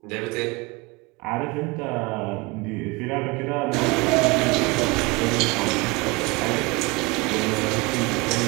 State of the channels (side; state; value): left; quieter; 25.3 dB